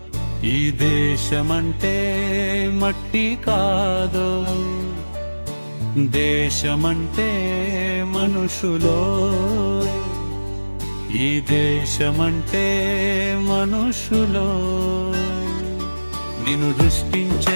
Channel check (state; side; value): inverted; both; correlation -1.00